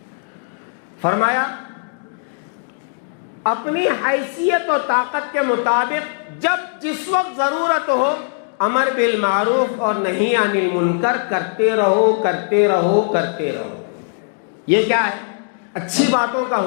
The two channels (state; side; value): silent; right; digital silence